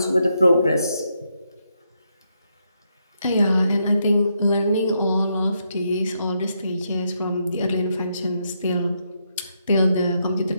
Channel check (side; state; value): both; inverted; correlation -0.79